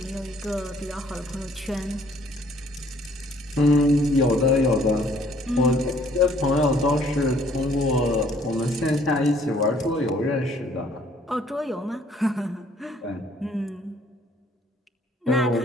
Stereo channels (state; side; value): normal; both; correlation 0.61